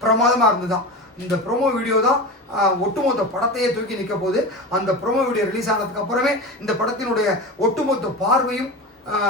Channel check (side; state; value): both; normal; correlation 0.27